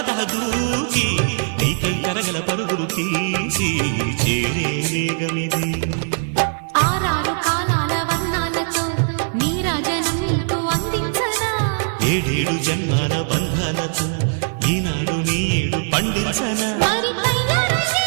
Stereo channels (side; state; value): left; silent; digital silence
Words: దూకి నీకై తరగల పరుగులు తీసి చేరే వేగమిది. ఆరారు కాలాల వర్ణాలతో నీరాజనం నీకు అందించనా, ఏడేడు జన్మాల బంధాలతో ఈనాడు నీ ఏడు పండించనా. మరి తయారయ్యే